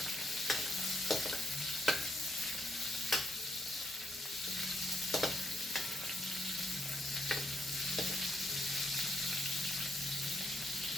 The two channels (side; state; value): both; normal; correlation 0.77